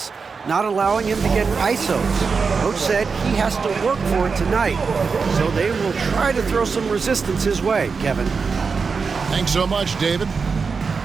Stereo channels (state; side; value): quieter; left; 5.1 dB